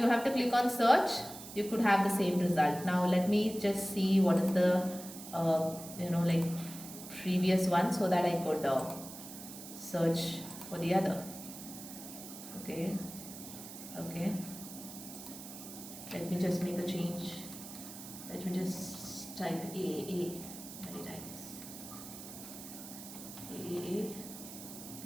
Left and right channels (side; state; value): right; noise; hiss, 13 dB below the sound